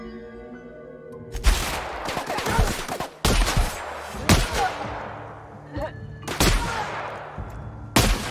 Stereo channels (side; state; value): both; identical; correlation 1.00